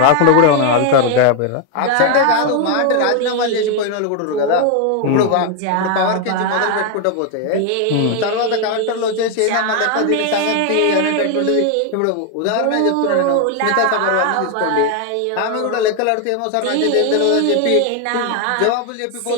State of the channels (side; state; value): both; different; correlation 0.01